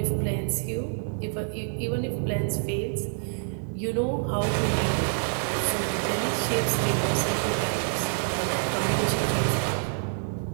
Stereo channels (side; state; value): left; silent; 60 dB below the other